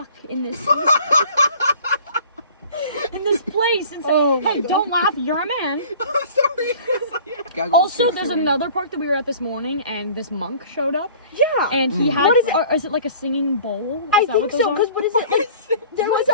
in this. in this place and say, Oh my hey, God. don't laugh, you're a man. I'm sorry. Gaggle was Also, too there's soon. another park that we were at this morning, and this monk showed up, Yeah. and he had, What is it? is it like a singing bowl? Is I that think what those so, are? because what is it? There was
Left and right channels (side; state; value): both; inverted; correlation -0.47